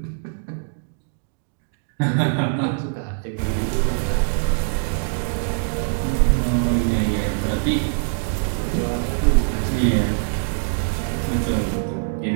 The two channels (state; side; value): silent; left; digital silence